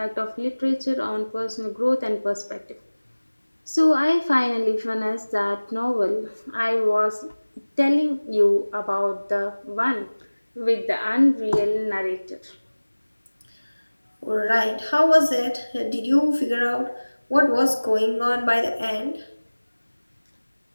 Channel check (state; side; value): inverted; both; correlation -1.00